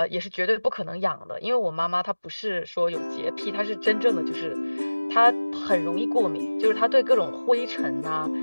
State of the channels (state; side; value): inverted; both; correlation -1.00